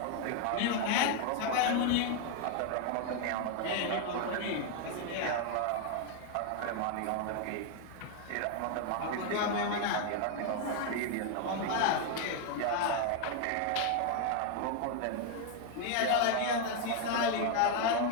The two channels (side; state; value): both; different; correlation 0.01